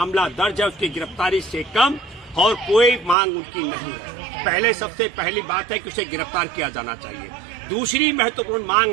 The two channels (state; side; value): drops out; left; at 3.2 s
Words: दर्ज है उसकी गिरफ्तारी से कम और कोई मांग उनकी नहीं है। पहले सबसे पहली बात है कि उसे गिरफ्तार किया जाना चाहिए। दूसरी महत्वपूर्ण